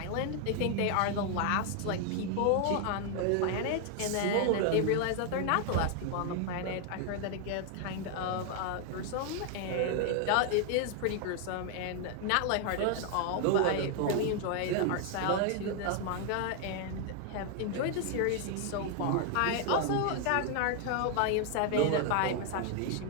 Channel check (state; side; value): different; both; correlation 0.00